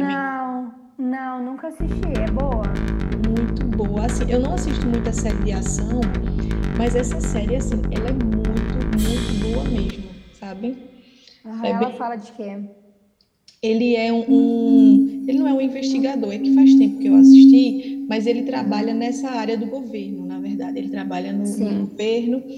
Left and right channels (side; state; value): both; identical; correlation 1.00